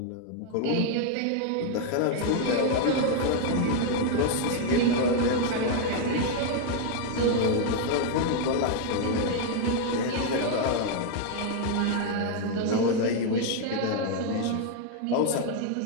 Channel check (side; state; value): both; different; correlation 0.00